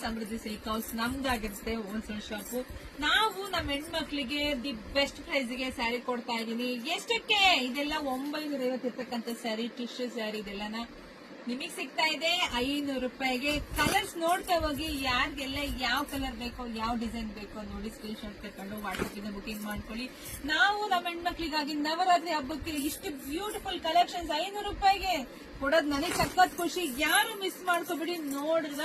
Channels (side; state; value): both; identical; correlation 1.00